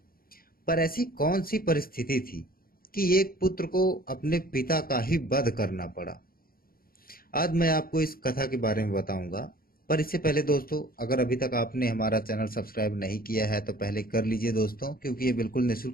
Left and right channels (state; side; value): late; right; 0.43 ms